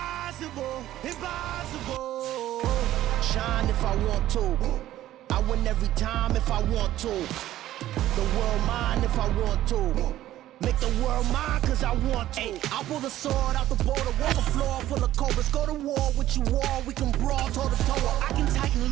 impossible. Shine if I want to. I win every time if I want to. The world mine if I want to. Make the world mine cause I want to. Ay, I'll pull the sword out the border, walk the floor full of cobras. Go to war with you all, we can brawl toe to toe. I can tighten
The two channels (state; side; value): quieter; left; 13.8 dB